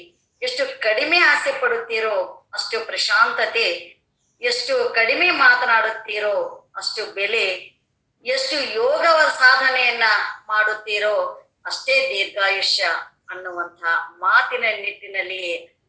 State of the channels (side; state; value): both; identical; correlation 1.00